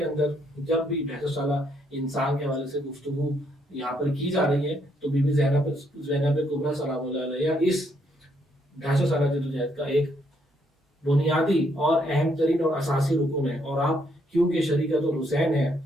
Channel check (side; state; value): both; normal; correlation 0.72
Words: اندر جب بھی 150 سالہ انسان کے حوالے سے گفتگو یہاں پر کی جا رہی ہے تو بی بی زینب کبریٰ سلام اللہ علیہ اس 150 سالہ جدوجہد کا ایک بنیادی اور اہم ترین اور اساسی رکن ہے. اور آپ کیونکہ شریکت الحسین ہیں،